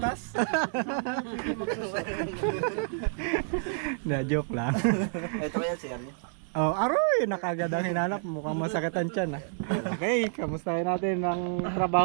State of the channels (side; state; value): left; silent; digital silence